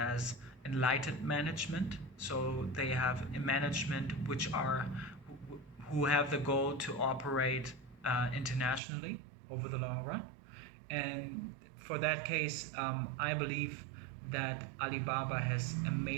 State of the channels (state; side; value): drops out; left; at 8.8 s